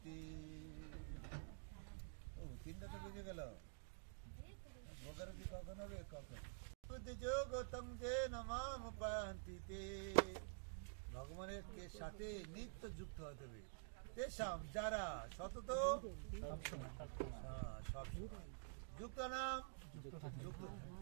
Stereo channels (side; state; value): left; silent; digital silence